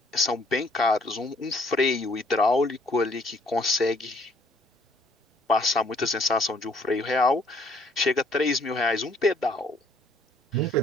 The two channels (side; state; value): both; normal; correlation 0.62